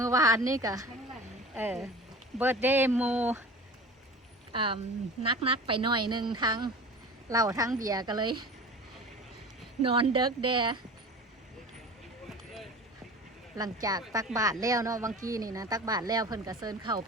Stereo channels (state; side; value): normal; both; correlation 0.37